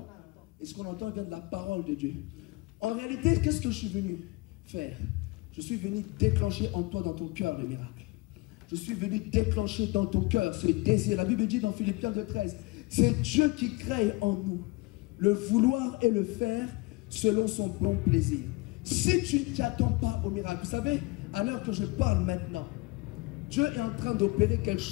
et ce qu'on entend vient de la parole de Dieu. En réalité, qu'est-ce que je suis venu faire? Je suis venu déclencher en toi, dans ton cœur, le miracle. Je suis venu déclencher dans ton cœur ce désir. La Bible dit dans Philippiens 2,13, c'est Dieu qui crée en nous le vouloir et le faire selon son bon plaisir. Si tu ne t'attends pas au miracle, vous savez, à l'heure que je parle maintenant, Dieu est en train d'opérer quelque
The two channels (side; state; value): right; quieter; 24.1 dB